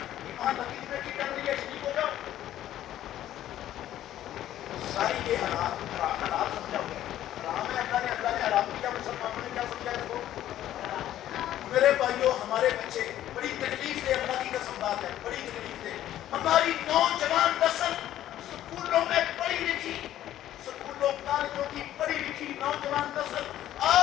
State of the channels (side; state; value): right; quieter; 12.6 dB